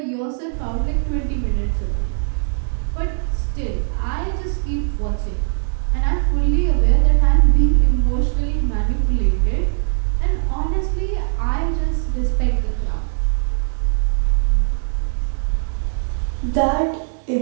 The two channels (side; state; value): left; silent; digital silence